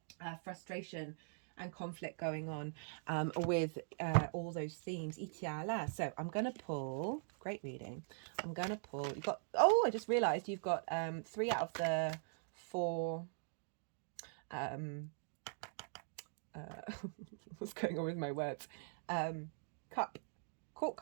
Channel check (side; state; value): left; silent; digital silence